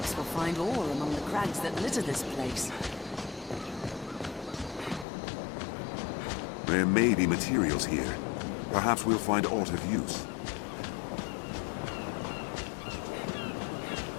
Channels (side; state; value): right; drops out; at 5.1 s